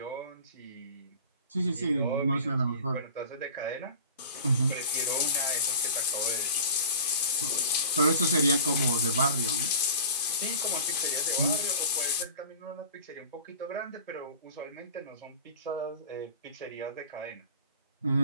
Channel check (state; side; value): inverted; both; correlation -0.37